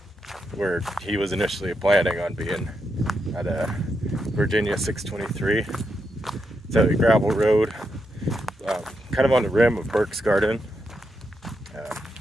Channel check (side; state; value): both; normal; correlation 0.83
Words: where he was initially planning on being at Virginia 623. It's at a gravel road, kind of on the rim of Burke's Garden,